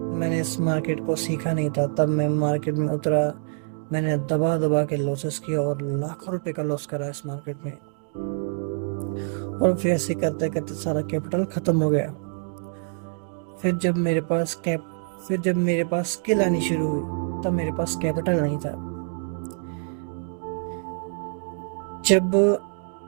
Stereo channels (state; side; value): silent; left; 61 dB below the other